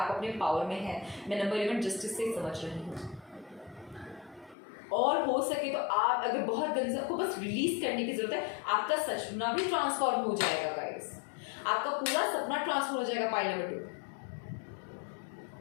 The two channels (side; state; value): right; drops out; at 4.5 s